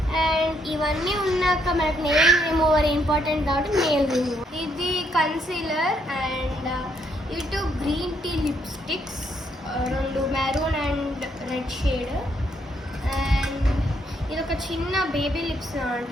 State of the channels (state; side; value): normal; both; correlation 0.73